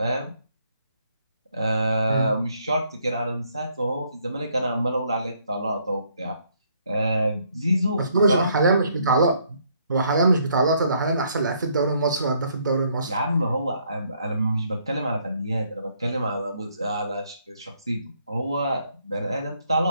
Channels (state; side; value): inverted; both; correlation -0.69